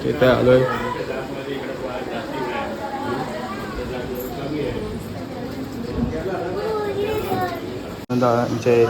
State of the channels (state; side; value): identical; both; correlation 1.00